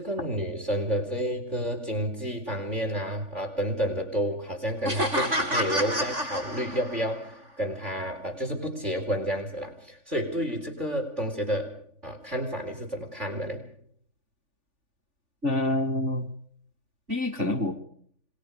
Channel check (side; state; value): left; late; 3.5 ms